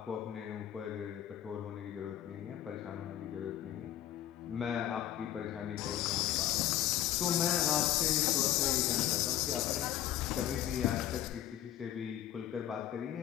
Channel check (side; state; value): right; quieter; 12.1 dB